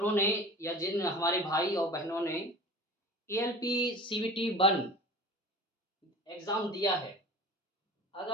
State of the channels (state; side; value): normal; both; correlation 0.38